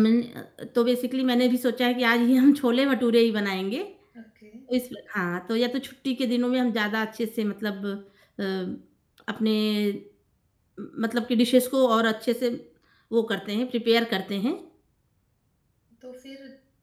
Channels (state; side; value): identical; both; correlation 1.00